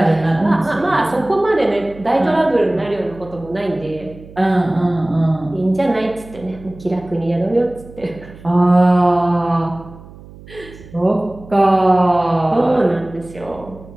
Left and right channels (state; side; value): noise; right; hum, 19 dB below the sound